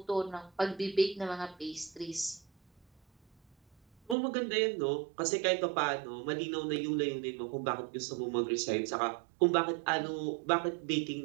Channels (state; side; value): drops out; left; at 4.2 s